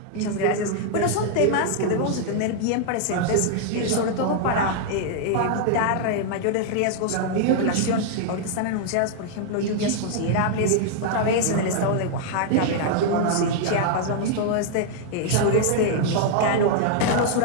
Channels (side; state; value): both; different; correlation -0.01